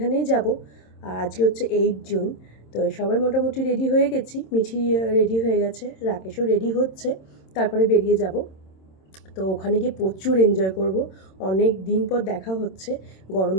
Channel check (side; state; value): right; late; 26 ms